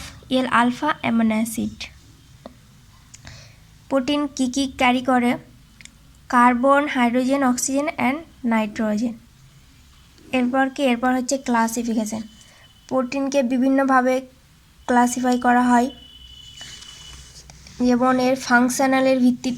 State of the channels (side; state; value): both; identical; correlation 1.00